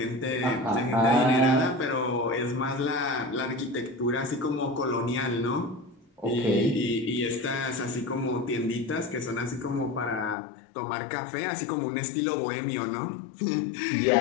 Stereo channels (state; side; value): drops out; right; at 10.4 s